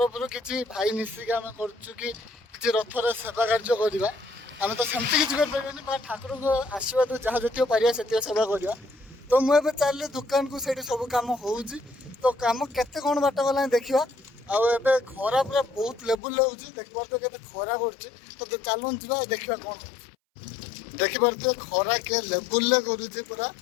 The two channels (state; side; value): drops out; right; at 16.2 s